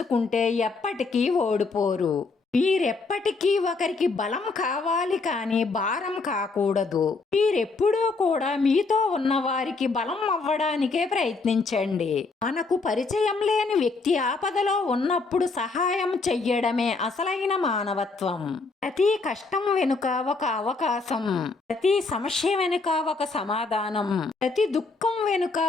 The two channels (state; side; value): quieter; right; 4.0 dB